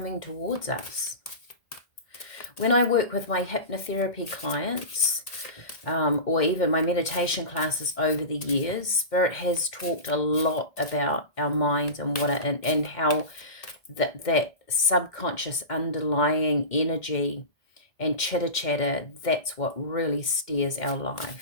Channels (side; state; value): right; late; 2.1 ms